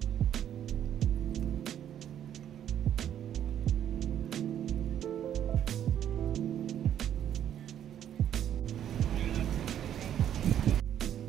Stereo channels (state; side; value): quieter; left; 10.2 dB